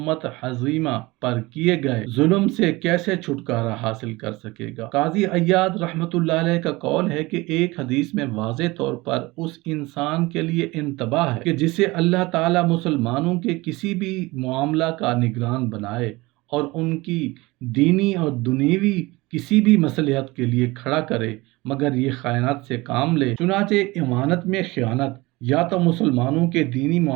حزیمہ پر کیے گئے ظلم سے کیسے چھٹکارا حاصل کر سکے گا؟ قاضی عیاض رحمۃ اللہ علیہ کا قول ہے کہ ایک حدیث میں واضح طور پر اس انسان کے لیے انتباہ ہے کہ جسے اللہ تعالیٰ مسلمانوں کے کسی بھی معاملہ کا نگران بنائے اور ان کی دینی اور دنیوی کسی بھی مصلحت کے لیے کھڑا کرے مگر یہ خیانت سے کام لے۔ چنانچہ امانت میں خیانت یا تو مسلمانوں کے دینی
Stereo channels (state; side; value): quieter; left; 21.9 dB